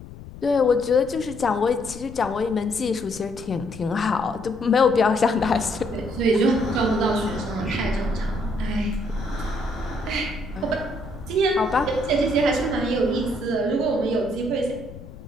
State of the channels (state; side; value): noise; left; rumble, 15 dB below the sound